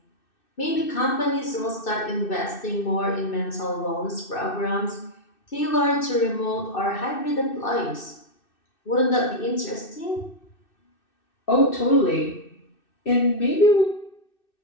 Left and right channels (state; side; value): late; right; 2.6 ms